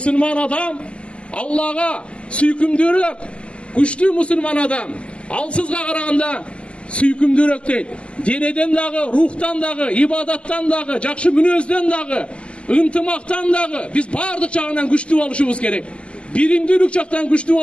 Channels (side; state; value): right; late; 0.054 ms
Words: адам Аллага сүйкүмдүүрөөк, күчтүү мусулман адам алсызга караганда сүйкүмдүүрөөк дейт. Денеден дагы, рухтан дагы, ибадаттан дагы, жакшы мүнөздөн дагы, ынтымактан дагы биз баардык жагынан күчтүү болушубуз керек. Биримдүүлүк жактан күчтүү